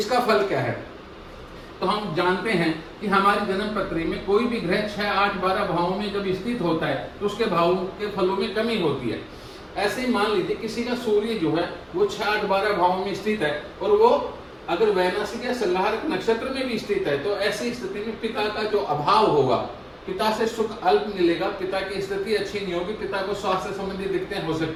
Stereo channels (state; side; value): identical; both; correlation 1.00